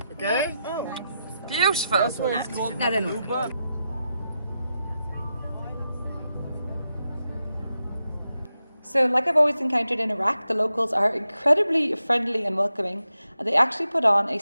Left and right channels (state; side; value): inverted; both; correlation -0.88